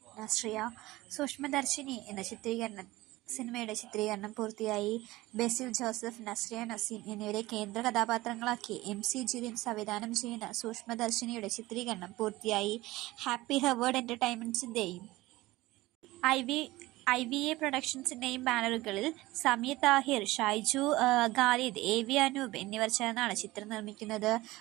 നസ്രിയ. സൂക്ഷ്മദർശിനി എന്ന സിനിമയുടെ ചിത്രീകരണം പൂർത്തിയായി. ബേസിൽ ജോസഫ്, നസ്രിയ നസീം എന്നിവരെ കേന്ദ്ര കഥാപാത്രങ്ങളാക്കി MC ജിതിൻ സംവിധാനം ചെയ്യുന്ന സൂക്ഷ്മദർശിനിയുടെ ചിത്രീകരണം പൂർത്തിയായി. ഹാപ്പി ഹവേർഡ് എൻ്റർടൈൻമെൻറ്റ്സിൻ്റെയും IVA പ്രൊഡക്ഷൻസിൻ്റെയും ബാനറുകളിൽ സമീർ താഹിർ, ഷൈജു ഖാലിദ്, AV അനൂപ് എന്നിവർ ചേർന്നാണ് ചിത്രം നിർമ്മിക്കുന്നത്.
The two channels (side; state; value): left; quieter; 18.9 dB